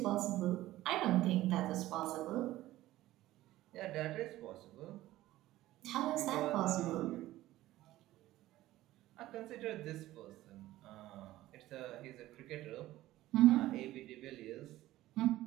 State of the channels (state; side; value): quieter; left; 15.8 dB